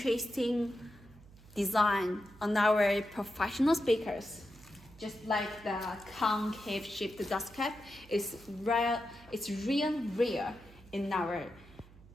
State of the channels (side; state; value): right; noise; hum, 23 dB below the sound